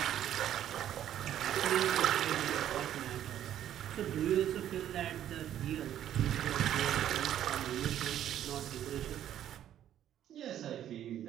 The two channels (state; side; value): quieter; left; 11.1 dB